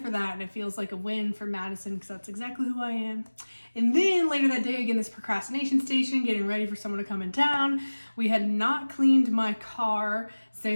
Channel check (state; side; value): inverted; both; correlation -1.00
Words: for that, and it feels like a win for Madison because that's exactly who I am. And then later that day, again, this procrastination station, getting ready for someone to come in town. We had not cleaned my car